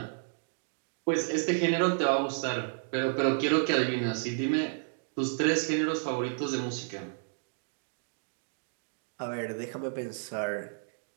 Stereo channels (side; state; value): left; silent; digital silence